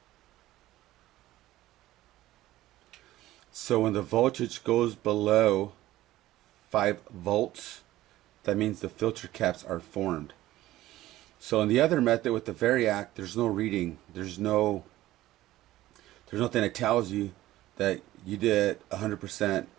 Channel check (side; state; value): left; quieter; 15.6 dB